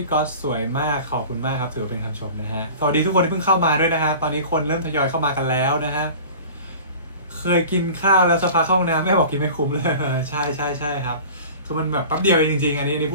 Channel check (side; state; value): both; inverted; correlation -0.40